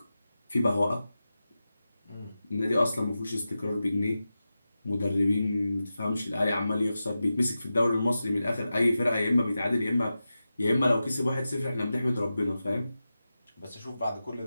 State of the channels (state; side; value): inverted; both; correlation -0.93